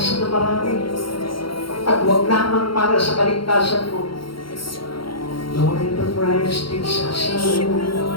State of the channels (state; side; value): late; right; 0.73 ms